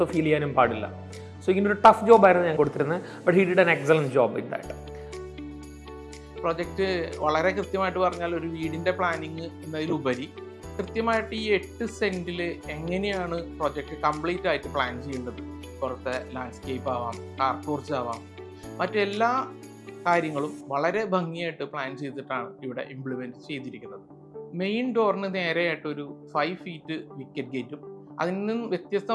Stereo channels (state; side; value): identical; both; correlation 1.00